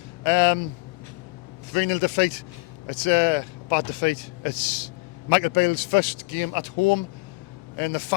3-0 defeat. It's a bad defeat. It's Michael Beale's first game at home, and the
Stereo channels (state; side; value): quieter; right; 27.0 dB